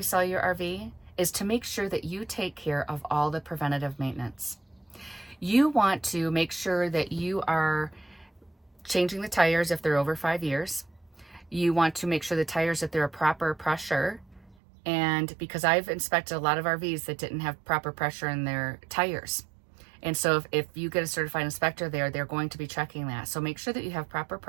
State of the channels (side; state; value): left; drops out; at 14.6 s